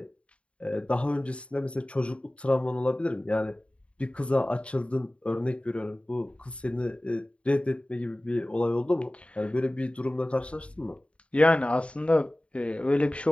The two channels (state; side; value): late; right; 0.060 ms